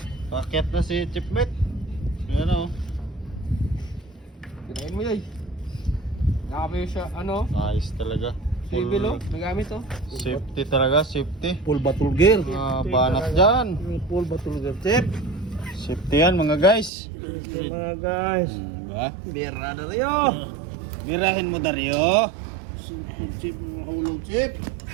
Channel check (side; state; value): left; drops out; at 16.9 s